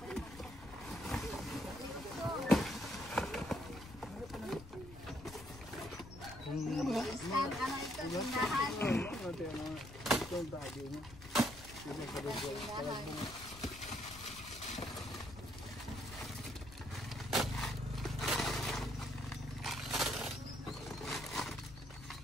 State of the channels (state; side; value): noise; left; rumble, 16 dB below the sound